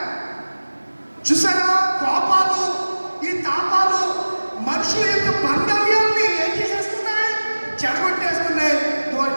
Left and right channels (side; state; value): both; inverted; correlation -1.00